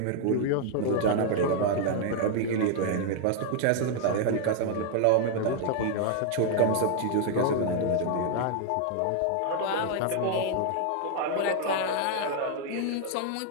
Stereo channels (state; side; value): different; both; correlation 0.00